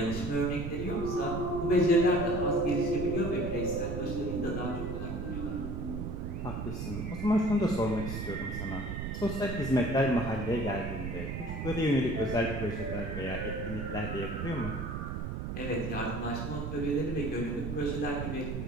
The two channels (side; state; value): right; noise; rumble, 4 dB below the sound